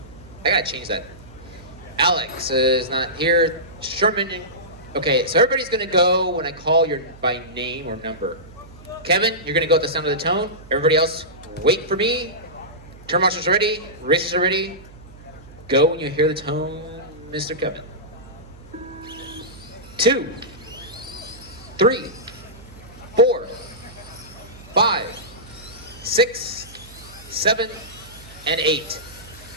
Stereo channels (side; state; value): right; noise; hum, 20 dB below the sound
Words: I gotta change that. Alex is not here. Sherman. Okay, so everybody's gonna go when I call your by name or number. Kevin, you're gonna go at the sound of the tone. Everybody else, wait for me. Turn marshals are ready. Racers are ready. Go when you hear the tone, Mr. Kevin. 2, 3, 4, 5, 6, 7, and 8.